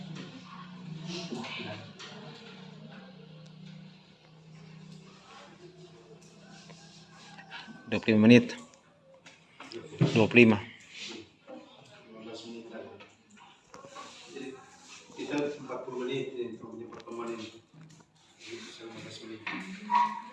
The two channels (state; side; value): identical; both; correlation 1.00